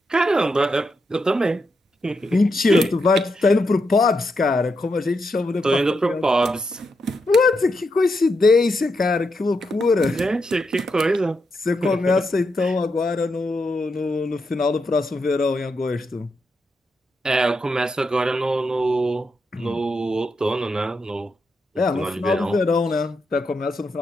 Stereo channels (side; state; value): both; normal; correlation 0.83